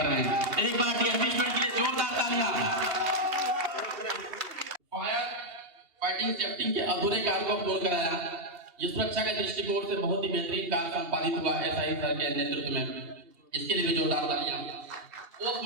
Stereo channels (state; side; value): late; left; 2.8 ms